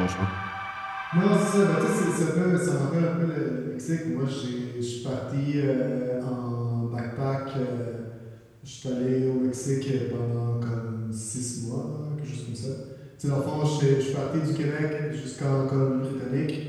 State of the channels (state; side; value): identical; both; correlation 1.00